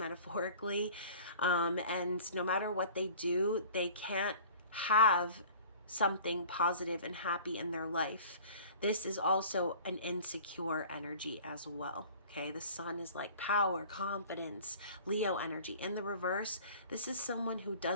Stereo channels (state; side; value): inverted; both; correlation -0.45